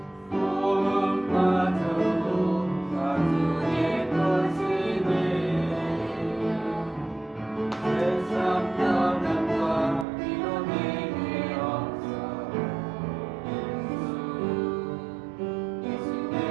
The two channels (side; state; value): left; drops out; at 10.1 s